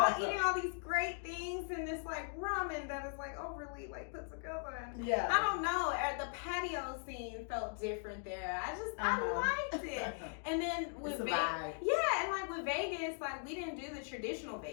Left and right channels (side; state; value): right; silent; 52 dB below the other